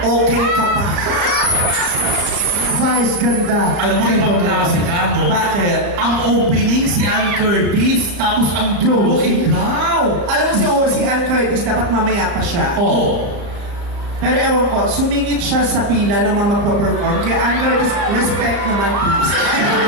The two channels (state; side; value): late; left; 35 ms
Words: ka pa. Vice ganda. Alam mo, ibang klase ka, no? Bakit? Ang opening si Ann Curtis, tapos ang dulo, ikaw. Alam mo si Ann Curtis, dapat mamaya pa siya. Oo. Pero ewan ko, sumingit siya sa pila ng mga magpa-perform. Kaya Ann Curtis, respect naman please.